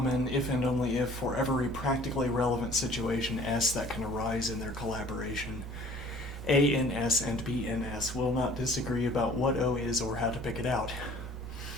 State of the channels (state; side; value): normal; both; correlation 0.51